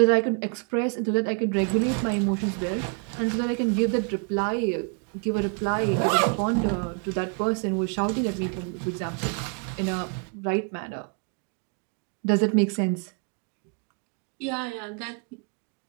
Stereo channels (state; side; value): quieter; left; 36.4 dB